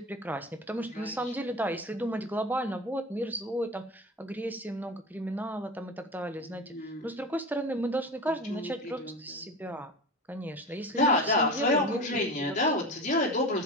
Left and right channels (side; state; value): both; normal; correlation 0.29